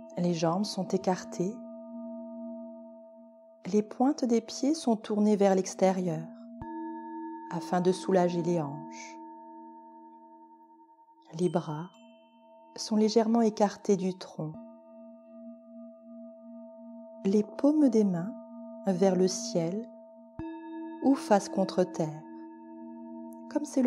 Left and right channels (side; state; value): both; identical; correlation 1.00